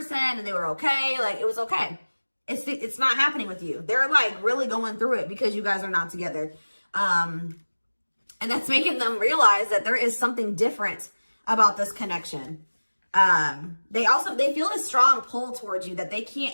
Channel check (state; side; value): inverted; both; correlation -1.00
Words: and they were okay. Like it was okay. It's not happening with you. They're like really going through it because you guys are not together. And that's making them realize that there is something different about this connection. They feel a strong pull towards you that they can't